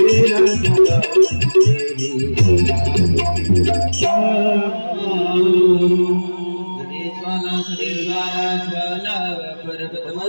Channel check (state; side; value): inverted; both; correlation -1.00